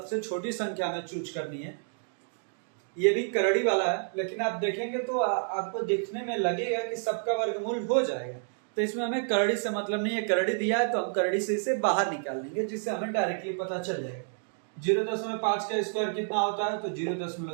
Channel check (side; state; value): left; silent; digital silence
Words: छोटी संख्या में चूज करनी है। ये भी करड़ी वाला है, लेकिन आप देखेंगे तो आपको देखने में लगेगा कि सबका वर्गमूल हो जाएगा, तो इसमें हमें करड़ी से मतलब नहीं है। करड़ी दिया है तो हम करड़ी से इसे बाहर निकाल लेंगे, जिससे हमें डायरेक्टली पता चल जाएगा। 0.5 का स्क्वायर कितना होता है? तो